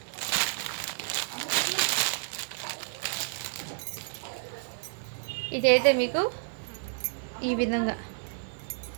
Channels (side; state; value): left; silent; 55 dB below the other